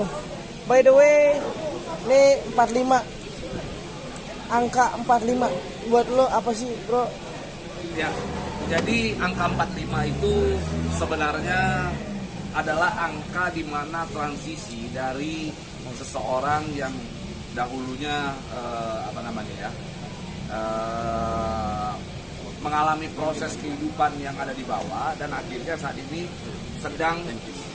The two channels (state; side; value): identical; both; correlation 1.00